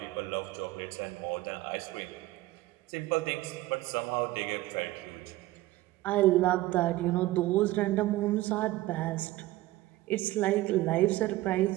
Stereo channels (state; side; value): quieter; left; 17.5 dB